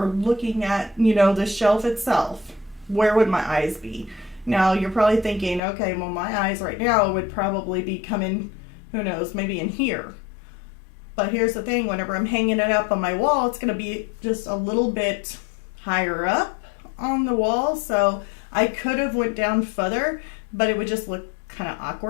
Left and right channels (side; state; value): right; drops out; at 5.6 s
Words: looking at, you know, the shelf itself, where would my eyes be? Now you're probably thinking, okay, well my eyes right now would probably be coming, who knows, maybe in here. But here's the thing, whenever I'm hanging it up on my wall, it's going to be just a little bit higher up on the wall. So I could have went down further, but it would just look kind of